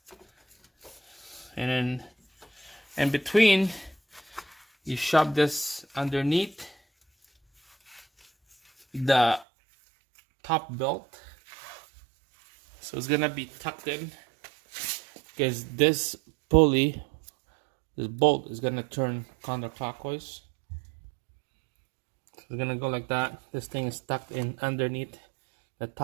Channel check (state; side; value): drops out; left; at 9.5 s